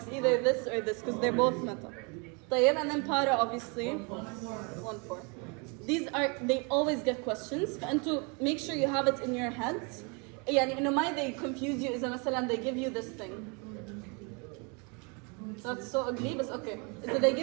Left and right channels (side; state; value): left; quieter; 33.1 dB